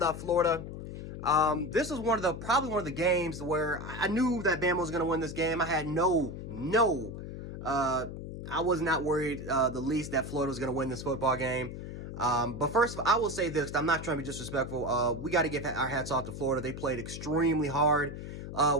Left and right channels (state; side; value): noise; left; hum, 9 dB below the sound